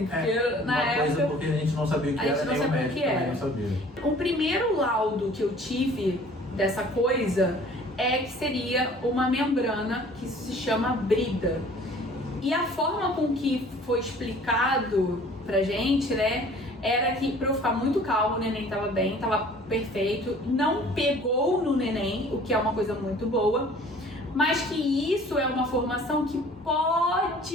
porque na época... porque a gente não sabia o que era, nem o médico também não sabia. O primeiro laudo que eu tive dessa coisa que seria uma membrana que se chama brida. E a forma com que foi explicado pra gente, né, era que pra eu ficar muito calma, o neném tava bem, tava perfeito, não pegou no neném, o que é uma coisa muito boa, mas que isso é uma formação que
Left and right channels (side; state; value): both; normal; correlation 0.50